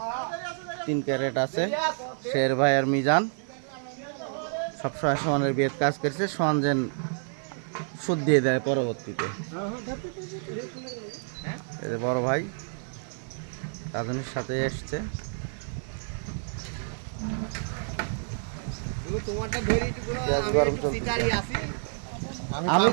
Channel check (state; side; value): silent; left; 56 dB below the other